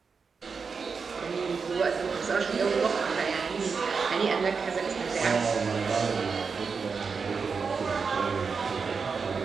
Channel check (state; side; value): quieter; left; 5.3 dB